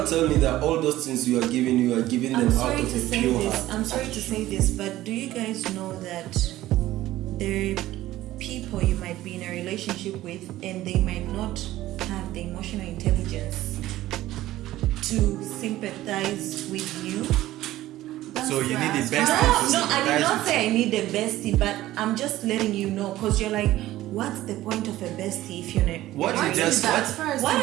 tell me that all those things you are giving them I'm out sorry of to a say pure this. heart. I'm sorry to say this, but do you guys know that there are people you might be in a relationship with and they might not have the emotional intelligence to sympathize with you? So you need the bestie. No, I did not say I need a bestie, but I'm just letting you know, because you're like, what's the point of a bestie if you're not? What I'm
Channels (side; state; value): left; quieter; 15.3 dB